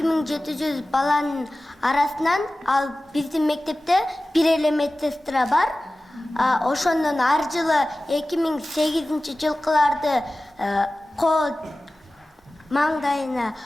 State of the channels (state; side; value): normal; both; correlation 0.96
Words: баланын арасынан ал биздин мектепте бир эле медсестра бар. Ошондон ар жылы 2008-жылкыларды кол маңдайына